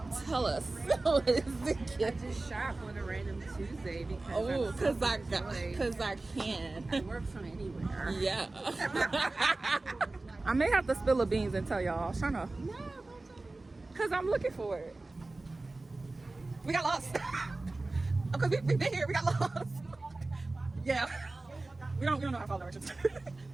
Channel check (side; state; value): left; quieter; 3.1 dB